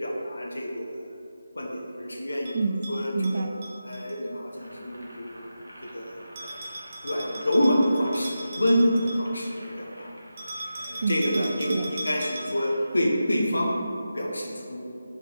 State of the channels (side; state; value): both; inverted; correlation -0.91